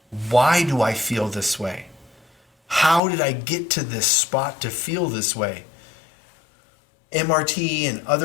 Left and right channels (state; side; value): drops out; right; at 3.0 s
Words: Why do I feel this way? How did I get to this spot to feel this way? MRT and